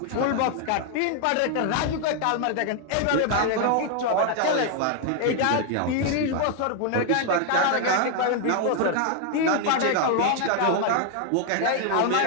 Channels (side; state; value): both; different; correlation 0.00